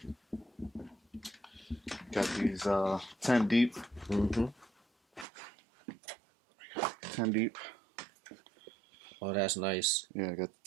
these 10 deep. 10 deep. Oh, that's nice. Yeah, I got the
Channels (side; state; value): left; drops out; at 5.2 s